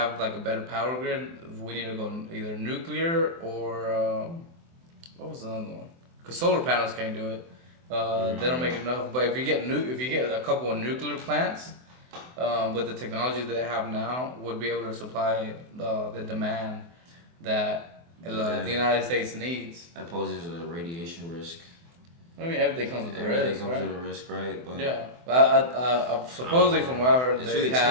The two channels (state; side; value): late; left; 24 ms